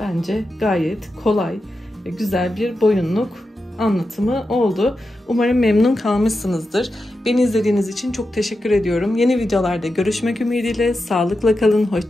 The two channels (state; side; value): normal; both; correlation 0.89